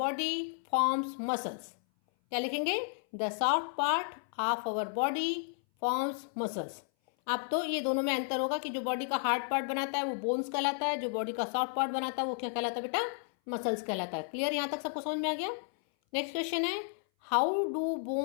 forms muscles. क्या लिखेंगे? The soft part of our body forms muscles. अब तो ये दोनों में अंतर होगा कि जो बॉडी का हार्ड पार्ट बनाता है वो बोन्स कहलाता है, जो बॉडी का सॉफ्ट पार्ट बनाता है वो क्या कहलाता है बेटा? मसल्स कहलाता है। क्लियर? यहां तक सबको समझ में आ गया? नेक्स्ट क्वेश्चन है, how do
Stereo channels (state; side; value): silent; right; 56 dB below the other